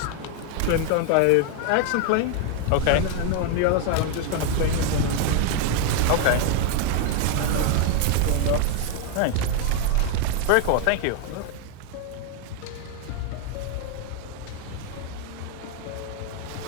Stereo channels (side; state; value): both; different; correlation 0.01